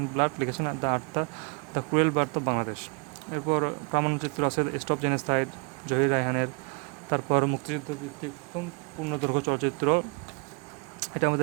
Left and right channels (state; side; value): quieter; left; 34.1 dB